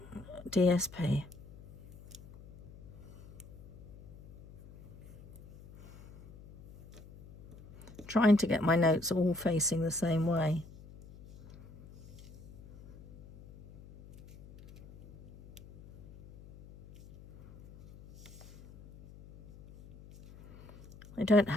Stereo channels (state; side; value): noise; left; hum, 20 dB below the sound